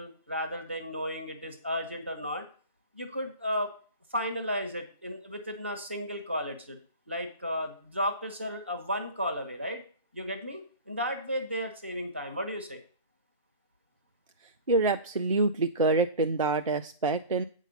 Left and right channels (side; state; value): both; inverted; correlation -0.36